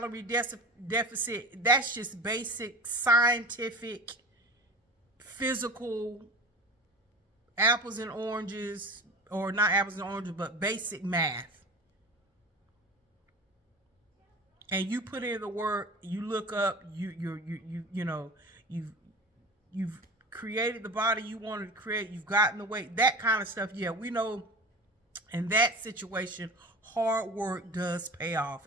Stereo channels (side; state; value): both; normal; correlation 0.34